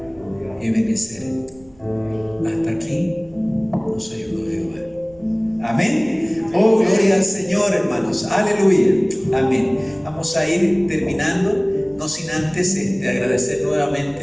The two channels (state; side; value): noise; right; rumble, 28 dB below the sound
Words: y obedecer. Hasta aquí nos ayudó Jehová. Amén. Oh, gloria al Señor, hermanos. Aleluya. Amén. Vamos a ir terminando, no sin antes agradecer